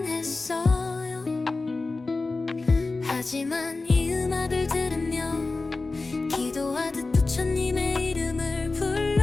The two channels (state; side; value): quieter; right; 3.6 dB